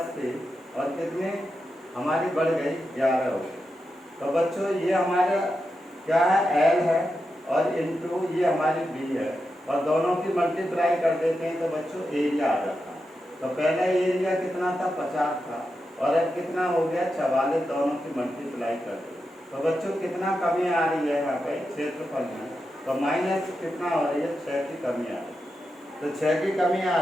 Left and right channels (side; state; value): both; normal; correlation 0.88